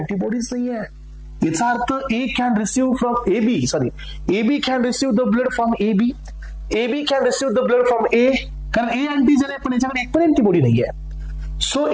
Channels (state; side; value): identical; both; correlation 1.00